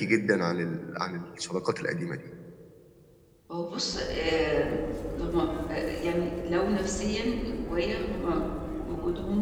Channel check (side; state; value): both; identical; correlation 1.00